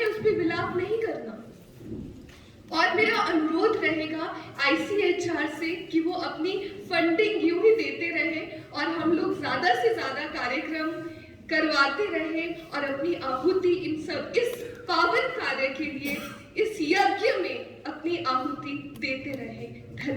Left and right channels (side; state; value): both; identical; correlation 1.00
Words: उस पर विलाप नहीं करना। और मेरा अनुरोध रहेगा ICHR से कि वो अपनी फंडिंग यूं ही देते रहे और हम लोग ज्यादा से ज्यादा कार्यक्रम करवाते रहे और अपनी आहुति इस पावन कार्य के लिए, इस यज्ञ में अपनी आहुति देते रहे।